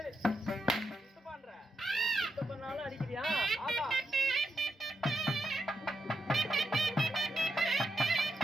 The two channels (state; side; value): normal; both; correlation 0.84